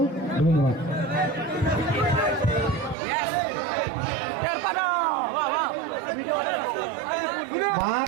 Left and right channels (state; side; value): drops out; left; at 3.0 s